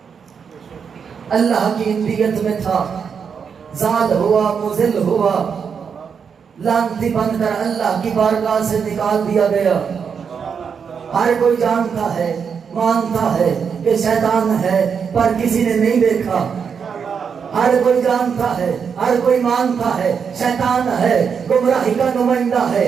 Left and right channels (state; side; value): quieter; left; 6.5 dB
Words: اللہ کی انبیت میں تھا، زال ہوا، مذل ہوا، لعنتی بن کر اللہ کی بارگاہ سے نکال دیا گیا۔ ہر کوئی جانتا ہے، مانتا ہے کہ شیطان ہے، پر کسی نے نہیں دیکھا۔ ہر کوئی جانتا ہے، ہر کوئی مانتا ہے شیطان ہے، گمراہی کا نمائندہ ہے،